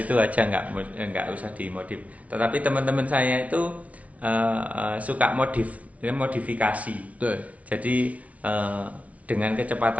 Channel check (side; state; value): left; late; 0.067 ms